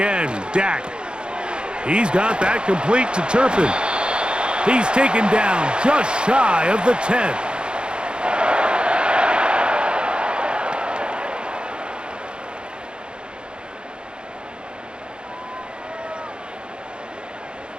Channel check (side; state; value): left; late; 0.051 ms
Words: Dak. He's got that complete to Turpin. He's taken down just shy of the 10.